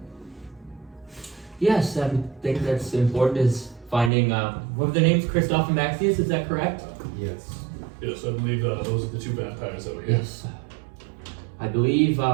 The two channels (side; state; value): left; drops out; at 4.1 s